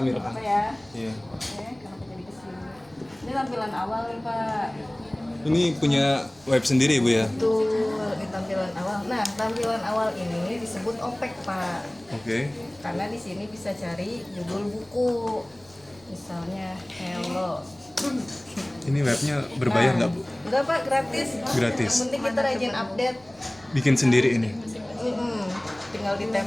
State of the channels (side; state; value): right; noise; rumble, 28 dB below the sound